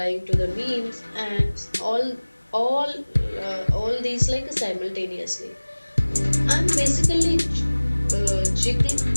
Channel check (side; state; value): both; inverted; correlation -1.00